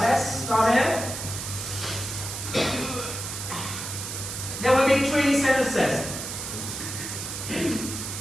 start it. There will be 3 sentences.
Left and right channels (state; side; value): noise; right; hiss, 6 dB below the sound